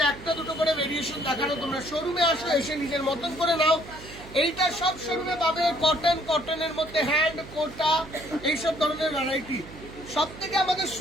একটা দুটো করে ভেরিয়েশন দেখানো। তোমরা শোরুমে আসো, এসে নিজের মতন করে নাও। এইটা সব শোরুমে পাবে কটন, কটনের মধ্যে হ্যান্ড, কোটা, এইসব ধরনের ভ্যারাইটি। সব থেকে আমাদের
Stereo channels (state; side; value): noise; right; hum, 16 dB below the sound